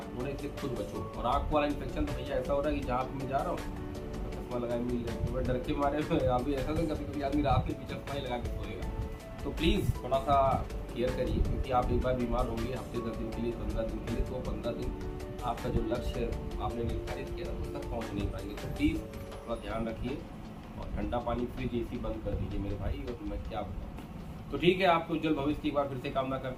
होने से खुद बचो। और आँख वाला इन्फेक्शन तो भैया ऐसा हो रहा है कि जहाँ पे मैं जा रहा हूँ चश्मा लगाए मिल जाए, तो मैं डर के मारे अभी ऐसा तो कभी आदमी रात के पीछे चश्मा ही लगा के सोएगा। तो प्लीज़ थोड़ा सा केयर करिए, क्योंकि आप एक बार बीमार होंगे हफ्ते 10 दिन के लिए, 15 दिन के लिए, तो 15 दिन आपका जो लक्ष्य आपने निर्धारित किया था उस तक पहुँच नहीं पाएंगे। तो प्लीज़ थोड़ा ध्यान रखिए और ठंडा पानी, फ्रिज, एसी बंद कर दीजिए मेरे भाई। और मैं क्या बताऊँ। तो ठीक है, आपको उज्जवल भविष्य की एक बार फिर से कामना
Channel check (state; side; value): identical; both; correlation 1.00